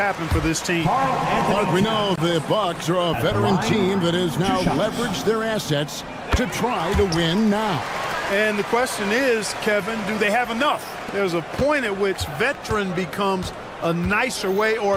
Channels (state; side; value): identical; both; correlation 1.00